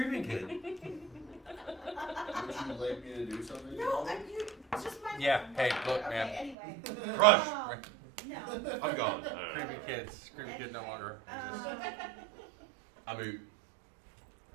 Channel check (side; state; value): left; drops out; at 6.6 s